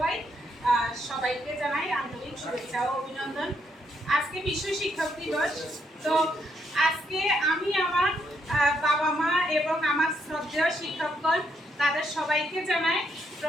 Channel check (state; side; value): normal; both; correlation 0.76